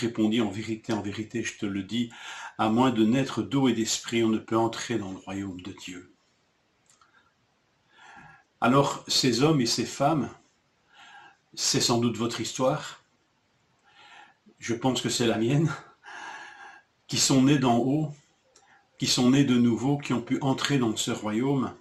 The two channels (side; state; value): both; identical; correlation 1.00